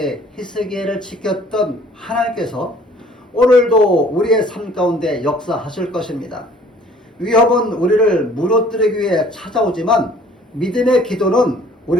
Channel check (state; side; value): normal; both; correlation 0.55